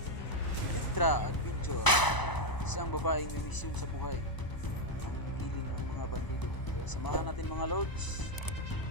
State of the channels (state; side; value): late; right; 1.0 ms